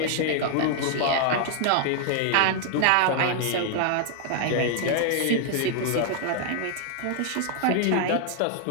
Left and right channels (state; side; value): different; both; correlation 0.00